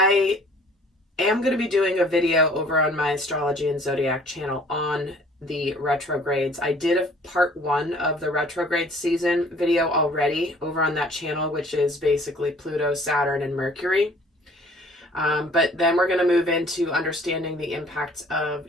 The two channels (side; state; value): both; normal; correlation 0.54